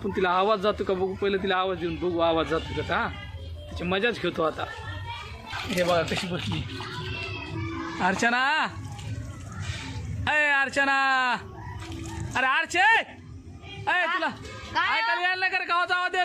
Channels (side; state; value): both; identical; correlation 1.00